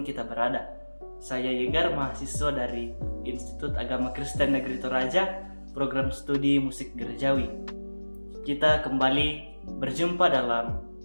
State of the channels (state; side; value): inverted; both; correlation -1.00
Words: kita berada. Saya Yegar, mahasiswa dari Institut Agama Kristen Negeri Toraja, program studi musik gerejawi. Kita kembali berjumpa dalam